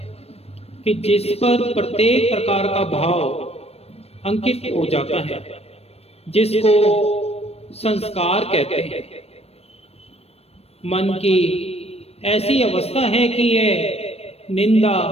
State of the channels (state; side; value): late; right; 0.29 ms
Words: कि जिस पर प्रत्येक प्रकार का भाव अंकित हो जाता है, जिसको संस्कार कहते हैं। मन की ऐसी अवस्था है कि यह निंदा,